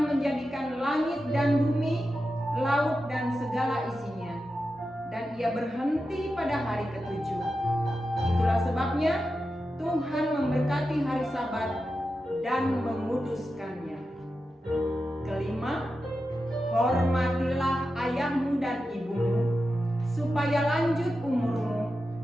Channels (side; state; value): both; normal; correlation 0.90